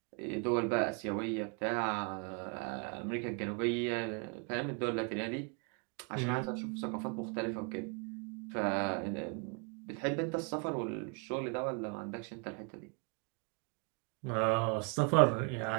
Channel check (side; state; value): left; quieter; 34.9 dB